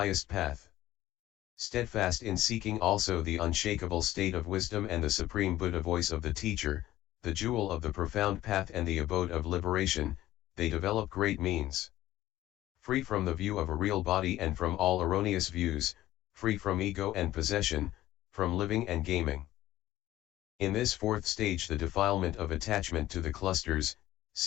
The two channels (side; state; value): right; quieter; 14.9 dB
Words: path. Steadfast in seeking also the unshakable state of wisdom and the supreme Buddha voice of the teacher, the jewel of the profound path and the abode of liberation, they develop great means. Free from the view of a real body and from all erroneous views, free from ego and possession, from living and gaming. In this fourth stage the defilement of attachment to the clusters,